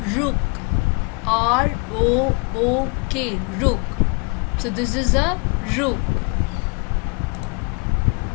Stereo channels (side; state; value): right; quieter; 32.1 dB